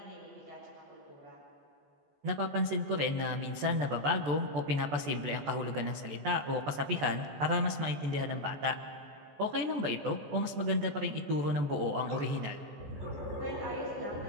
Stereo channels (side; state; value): left; late; 14 ms